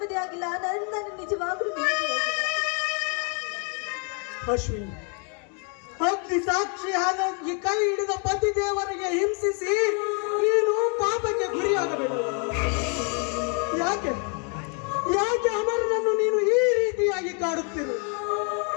ಆಗಿಲ್ಲ. ನನ್ನ ನಿಜವಾಗ್ಲೂ ನೆಮ್ಮದಿಯಾಗಿಲ್ಲ ಅಶ್ವಿನಿ. ಅಗ್ನಿ ಸಾಕ್ಷಿಯಾದ ಈ ಕೈ ಹಿಡಿದ ಪತಿ ದೇವರಿಗೆ ಹಿಂಸಿಸಿ ನೀನು ಪಾಪಕ್ಕೆ ಗುರಿಯಾಗಬೇಕು. ಯಾಕೆ ಯಾಕೆ ಅಮರನನ್ನು ನೀನು ಈ ರೀತಿಯಾಗಿ ಕಾಡುತ್ತಿರು?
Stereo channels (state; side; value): quieter; right; 38.5 dB